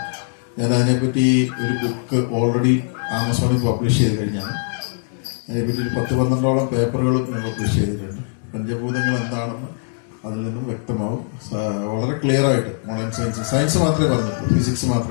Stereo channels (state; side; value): silent; right; digital silence